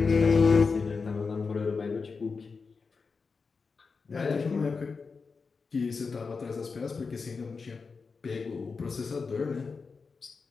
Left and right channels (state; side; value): quieter; right; 4.8 dB